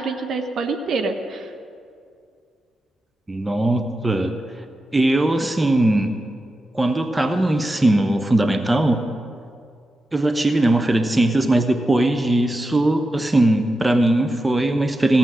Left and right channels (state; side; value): normal; both; correlation 0.90